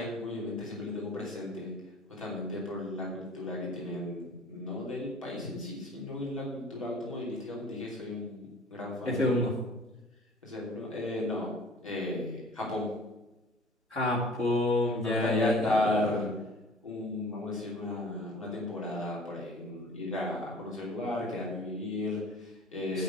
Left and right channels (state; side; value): normal; both; correlation 0.47